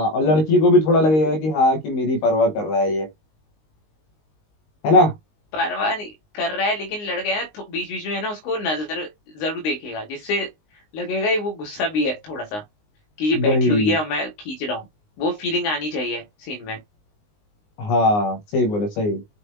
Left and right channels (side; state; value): right; late; 19 ms